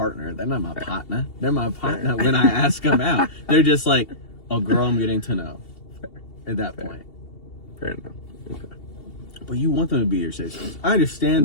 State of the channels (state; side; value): late; right; 2.7 ms